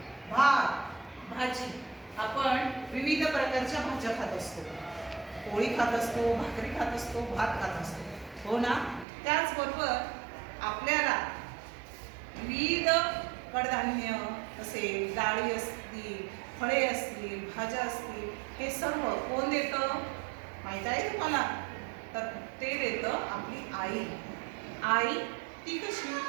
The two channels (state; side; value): drops out; left; at 9.1 s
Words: भात, भाजी. आपण विविध प्रकारच्या भाज्या खात असतो, पोळी खात असतो, भाकरी खात असतो, भात खात असतो, हो ना? त्याचबरोबर आपल्याला विविध कडधान्य असेल, डाळी असतील, फळे असतील, भाज्या असतील, हे सर्व कोण देतं माहीत आहे तुम्हाला? तर ते देतं आपली आई. आई ती कशी?